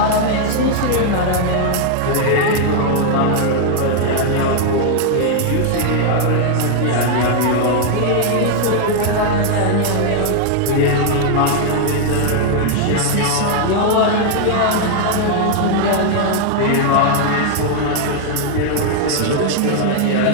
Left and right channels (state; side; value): different; both; correlation 0.00